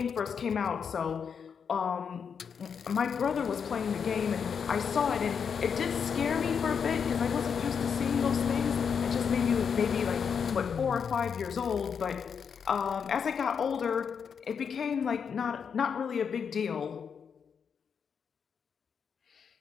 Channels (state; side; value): quieter; right; 6.7 dB